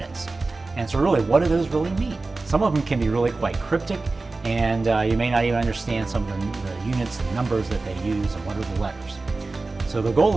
And so really, what do those really mean? Some of them can be really quite cryptic, and you may not even understand some of the units and numbers that they use and what are the letters. So the goal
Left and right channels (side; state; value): left; quieter; 3.5 dB